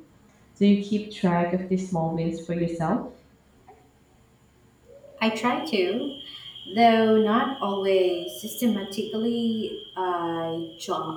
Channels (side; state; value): both; identical; correlation 1.00